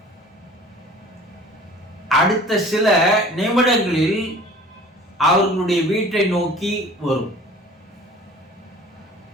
அடுத்த சில நிமிடங்களில் அவர்களுடைய வீட்டை நோக்கி வரும்.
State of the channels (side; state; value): both; normal; correlation 0.46